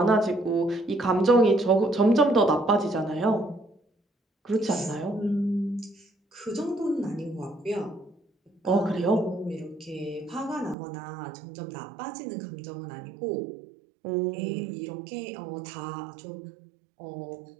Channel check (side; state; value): left; drops out; at 10.8 s